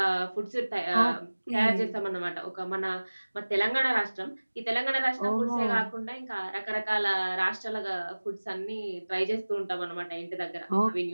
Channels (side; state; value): both; inverted; correlation -1.00